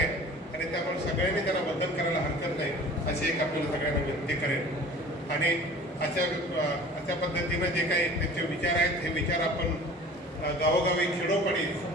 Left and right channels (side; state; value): both; normal; correlation 0.44